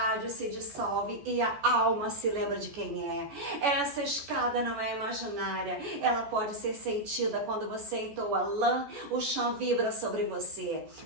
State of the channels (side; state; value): left; late; 14 ms